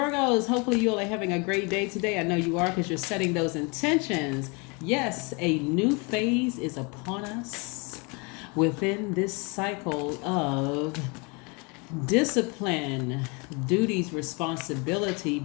hopefully you all are having a great day today. I know you are because you're setting those intentions. Yes, a new phase is upon us within this cycle of discipline, duties, responsibility,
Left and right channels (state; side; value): quieter; right; 30.5 dB